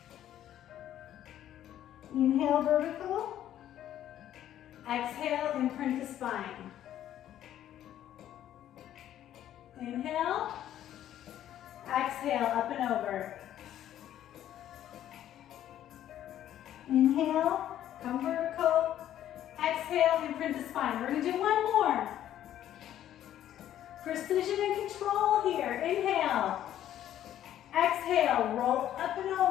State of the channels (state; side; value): quieter; right; 11.6 dB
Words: Inhale, vertical. Exhale, imprint the spine. Inhale. Exhale, up and over. Inhale, come vertical. Exhale, imprint the spine. We're going to do one more. Precision and control here. Inhale. Exhale, roll up and